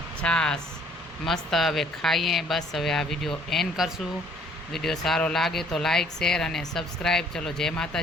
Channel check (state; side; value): normal; both; correlation 0.60